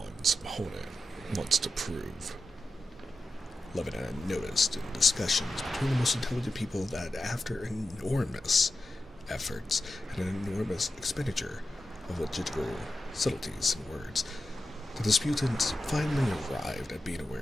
opponent wants to prove." Levin had noticed in discussions between the most intelligent people that after enormous efforts and an enormous expenditure of logical subtleties and words, the disputants finally arrived at being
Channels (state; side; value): normal; both; correlation 0.91